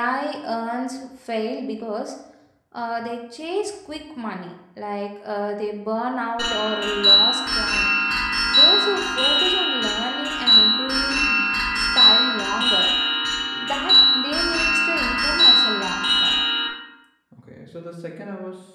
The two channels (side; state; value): both; identical; correlation 1.00